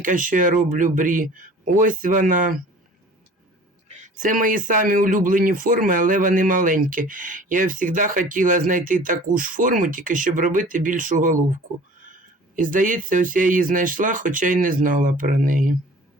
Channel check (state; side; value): normal; both; correlation 0.46